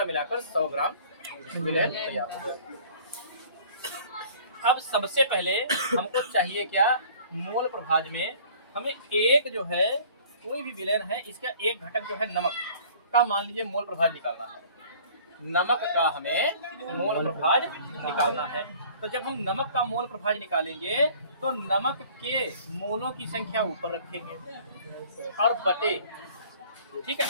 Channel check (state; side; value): inverted; both; correlation -0.51